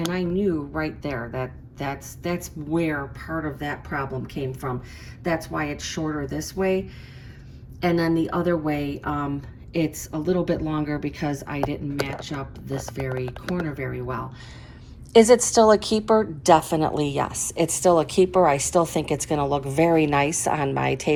I knew right there that that's where part of that problem came from. That's why it's shorter this way. And then the other way, it's a little bit longer because I didn't match up this very corner very well. Is it still a keeper? Definitely yes. It's still a keeper. I still think it's going to look very nice on my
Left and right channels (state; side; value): identical; both; correlation 1.00